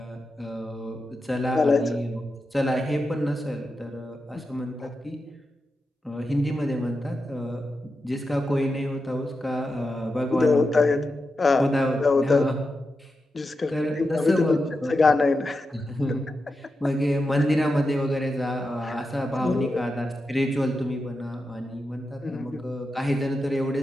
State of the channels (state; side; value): normal; both; correlation 0.89